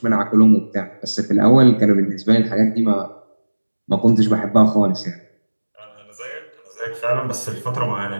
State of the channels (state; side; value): inverted; both; correlation -1.00